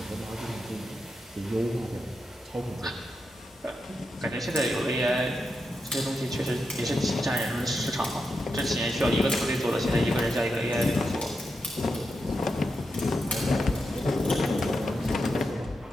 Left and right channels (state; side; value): normal; both; correlation 0.87